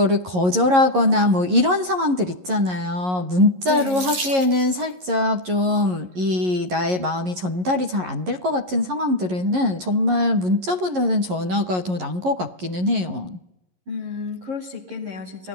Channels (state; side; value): late; left; 11 ms